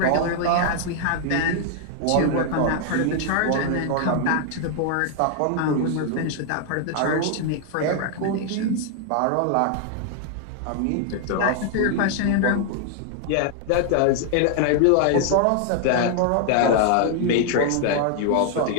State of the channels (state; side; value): different; both; correlation 0.00